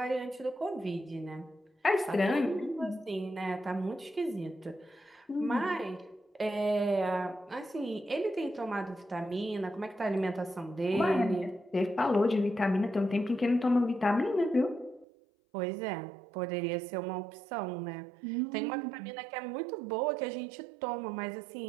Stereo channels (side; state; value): left; drops out; at 15.1 s